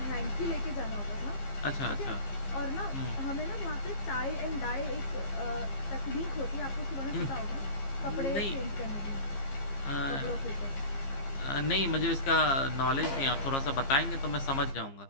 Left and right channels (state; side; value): late; right; 15 ms